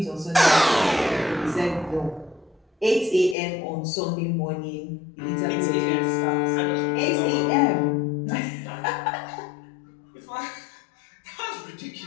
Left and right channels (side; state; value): right; drops out; at 3.4 s